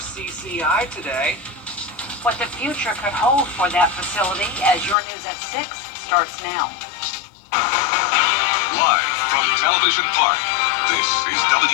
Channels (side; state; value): right; drops out; at 5.0 s